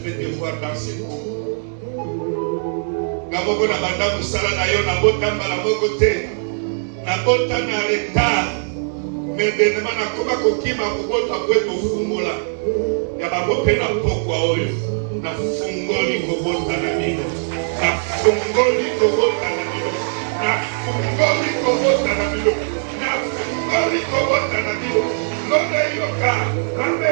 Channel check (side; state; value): left; silent; 66 dB below the other